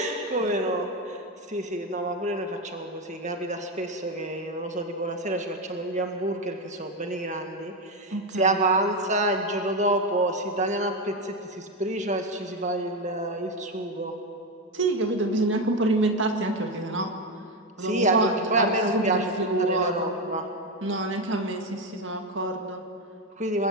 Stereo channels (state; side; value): normal; both; correlation 0.12